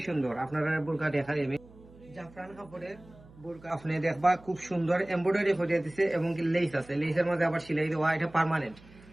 সুন্দর। আপনারা বুরকা দেখাই আমি জাফরান কাপড়ের বুরকা আপনি দেখবা, খুব সুন্দর এমব্রয়ডারি ফুটিয়ে দিছে এবং কি লেস আছে, লেসের মধ্যে আবার সেলাই দেওয়া, এটা পার্মানেন্ট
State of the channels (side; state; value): right; noise; hum, 23 dB below the sound